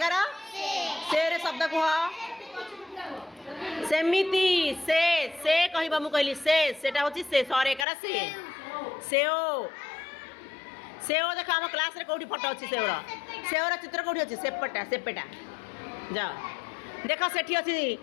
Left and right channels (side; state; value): right; drops out; at 7.9 s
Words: ସେରେ ଶବ୍ଦ କୁହ ସେମିତି ସେ କହିବ ମୁଁ କହିଲି ସେଟା ହେଉଛି ସେ ସରେ ଏକାର ସେ ସେଓ ସେଓ ଦେଖ ଆମ କ୍ଲାସ୍ରେ କେଉଁଠି ଫଟୋ ଅଛି ସେଓର ଚିତ୍ର କେଉଁଠି ଅଛି ସେପେଟା ଯାଅ ଦେଖ ସେଠି ଅଛି